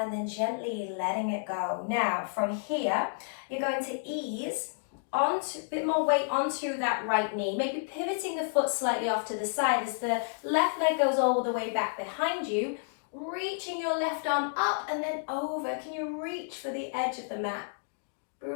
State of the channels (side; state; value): right; silent; digital silence